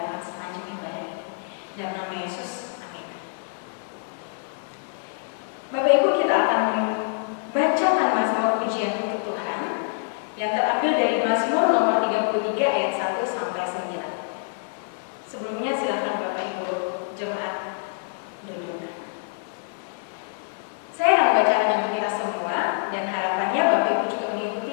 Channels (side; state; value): right; silent; 61 dB below the other